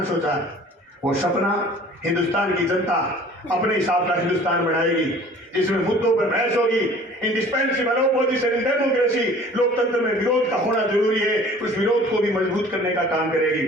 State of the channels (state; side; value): normal; both; correlation 0.48